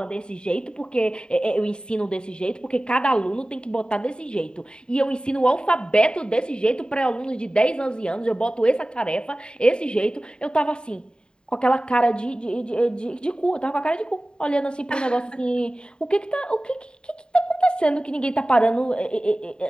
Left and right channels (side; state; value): right; late; 0.048 ms